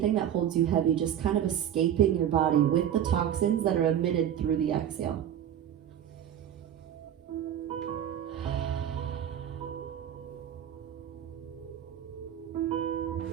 that holds you heavy just kind of escaping your body with the toxins that are emitted through the exhale.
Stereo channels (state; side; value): quieter; left; 10.1 dB